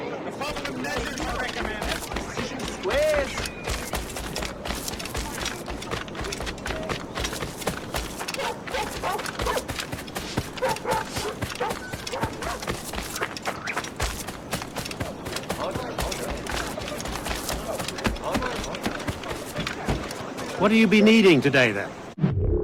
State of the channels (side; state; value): both; identical; correlation 1.00